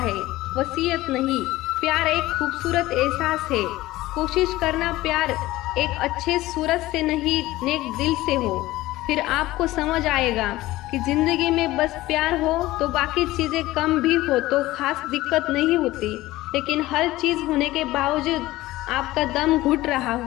वसीयत नहीं। प्यार एक खूबसूरत एहसास है। कोशिश करना प्यार एक अच्छे सूरत से नहीं, नेक दिल से हो। फिर आपको समझ आएगा कि जिंदगी में बस प्यार हो तो बाकी चीजें कम भी हो तो खास दिक्कत नहीं होती। लेकिन हर चीज होने के बावजूद आपका दम घुट रहा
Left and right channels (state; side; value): quieter; right; 17.4 dB